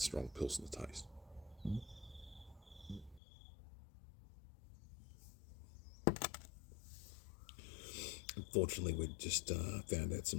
Pilsner taste. Unfortunately, we just found out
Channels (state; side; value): drops out; right; at 3.2 s